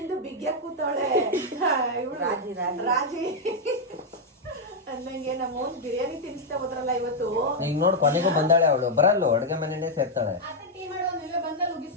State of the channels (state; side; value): normal; both; correlation -0.01